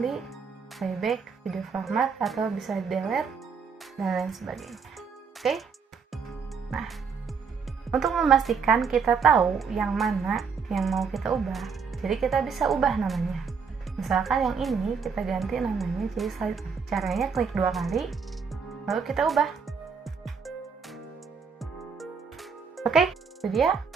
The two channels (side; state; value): left; quieter; 5.8 dB